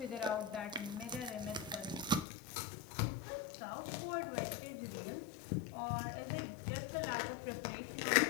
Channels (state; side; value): drops out; right; at 2.2 s